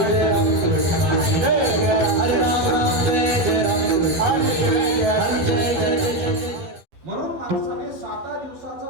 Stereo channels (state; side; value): late; left; 12 ms